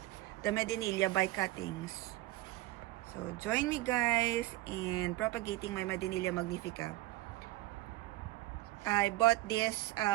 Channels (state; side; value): quieter; left; 17.5 dB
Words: the Medinilla by cuttings. So join me guys in propagating my Medinilla Magnifica. I bought this